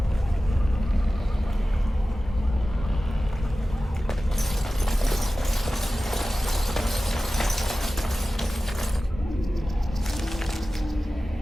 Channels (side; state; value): both; normal; correlation 0.96